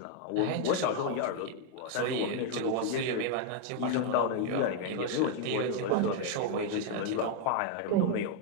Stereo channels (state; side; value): different; both; correlation 0.00